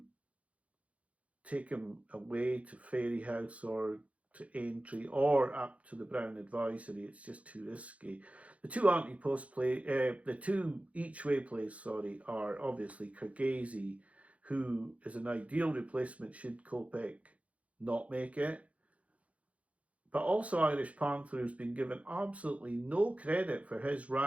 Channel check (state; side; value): late; left; 0.065 ms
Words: take him away to Fairy House or to Aintree or up to the Brown Advisory. It's just too risky. The two anti-post the two each-way plays, are obviously Kyrgyz, who is an ideal replacement should Kopek not make it. But also Irish Panther, who's been given absolutely no credit for his